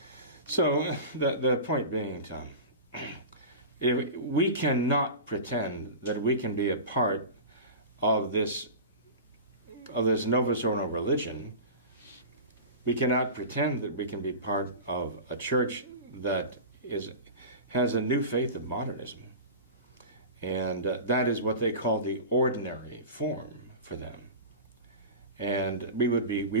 So the point being, Tom, if we cannot pretend that we can be a part of this Novus Ordo religion. We cannot pretend that we can be part of a church that has a new faith of modernism, and that is what they call the ordinary form for them. And we would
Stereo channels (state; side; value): inverted; both; correlation -0.31